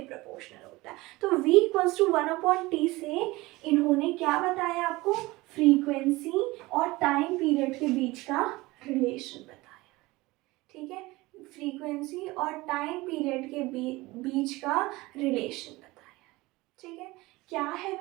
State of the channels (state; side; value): quieter; left; 20.9 dB